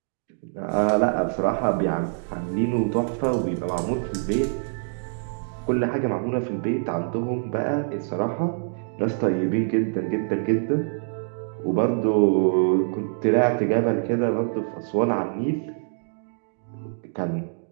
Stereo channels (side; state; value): left; silent; digital silence